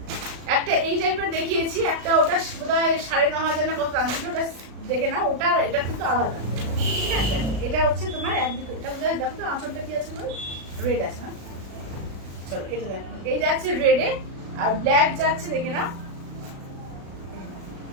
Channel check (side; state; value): left; late; 36 ms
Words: একটা এই টাইপের দেখিয়েছি, একটা ওটা বোধহয় 9,500 না কত দাম ছিল, ওটা দেখে নাও, ওটা এটা কিন্তু আলাদা, ঠিক আছে। এটা হচ্ছে তোমার একদিকে, এটা বোধহয় দেখো তো আঁচলটা কি আছে, রেড আছে না, চলো এটা দেখো, এই যাচ্ছে রেডে, আর ব্ল্যাক যাচ্ছে দেখে নাও,